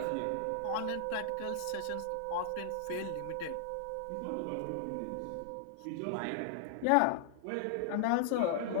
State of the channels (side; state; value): both; different; correlation -0.01